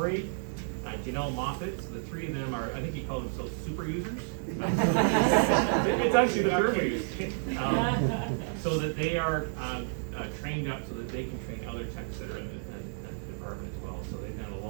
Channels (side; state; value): left; silent; 55 dB below the other